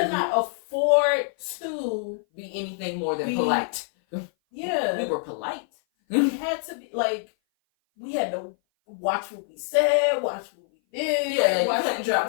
not afford to be anything more than polite. Yeah. We were polite. We had to be like, we had to watch what we said, watch what we did. Yeah, watch you couldn't drop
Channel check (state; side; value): silent; right; 57 dB below the other